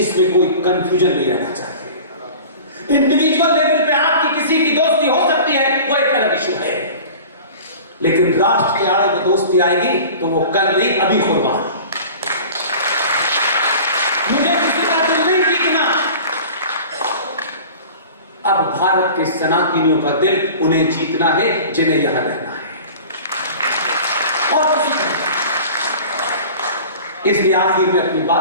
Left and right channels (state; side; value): inverted; both; correlation -0.40